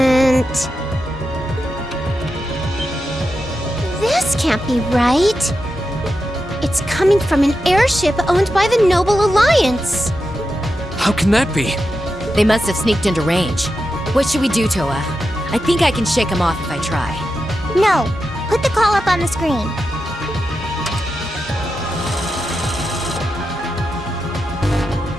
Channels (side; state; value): both; normal; correlation 0.89